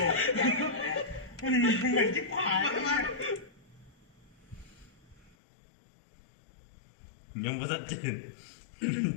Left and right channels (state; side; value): drops out; right; at 5.4 s